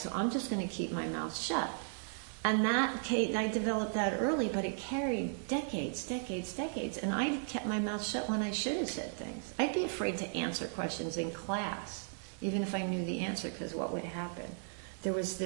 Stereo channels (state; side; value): silent; left; digital silence